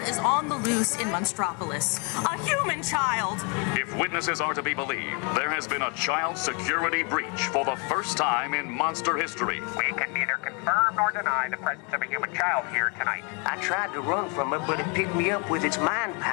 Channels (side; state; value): right; quieter; 33.8 dB